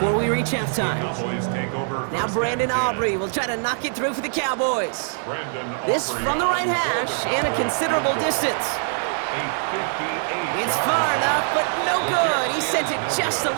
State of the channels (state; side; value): silent; left; 63 dB below the other